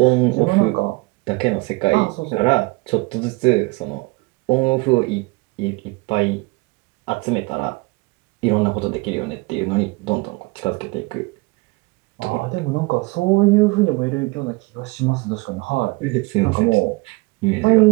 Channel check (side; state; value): left; quieter; 25.1 dB